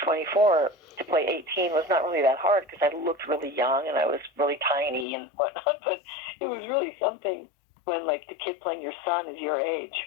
to play 18 was not really that hard because I looked really young and I was really tiny and whatnot. But it was really something when, like, the kid playing your son is your age,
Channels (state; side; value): drops out; right; at 5.1 s